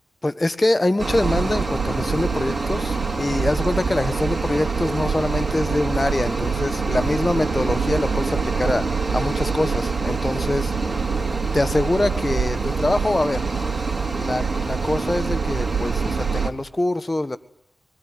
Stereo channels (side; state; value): both; normal; correlation 0.91